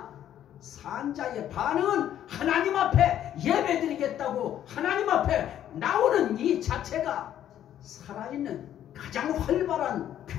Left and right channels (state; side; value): quieter; right; 11.0 dB